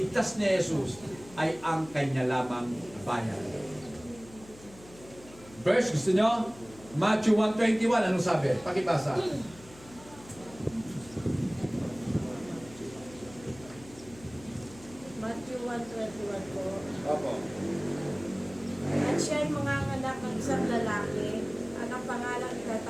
ni Jesus ay ang kanya lamang bayan. Verse, gusto nyo? Matthew 1:21, anong sabi? Pakibasa. Matthew 1:21 po. Opo. At siya'y manganganak ng isang lalaki, at ang pangalan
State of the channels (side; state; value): left; noise; hum, 20 dB below the sound